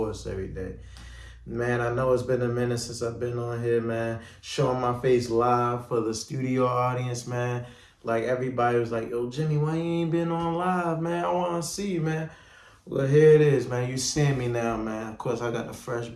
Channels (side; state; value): both; identical; correlation 1.00